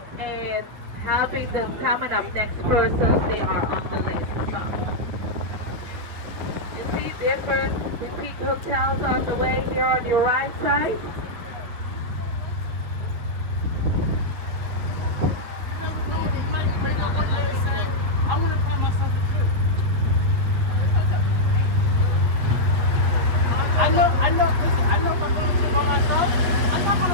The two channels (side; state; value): left; late; 8.9 ms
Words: and helping the coming up next persons they are on the list about. You see different boutique hotels on the way here on your right side. I want to find myself a trip. Listen, I know if I'm going to trip by myself, I'm not going